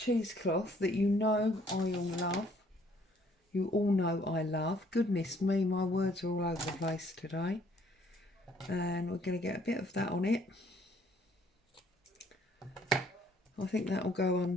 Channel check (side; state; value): both; normal; correlation 0.63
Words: that you know I all love. You all know I love. Goodness me, my words are all over the place today. And we're going to get a bit of that on it. I think that will go